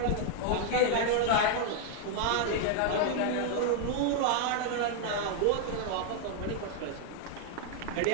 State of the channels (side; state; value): both; different; correlation 0.00